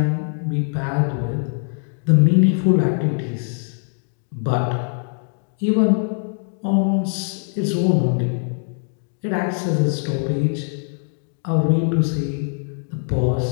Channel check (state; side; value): silent; right; 64 dB below the other